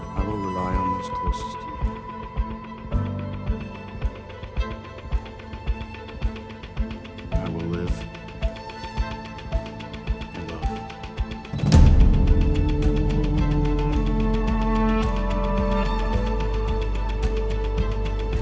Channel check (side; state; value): both; identical; correlation 1.00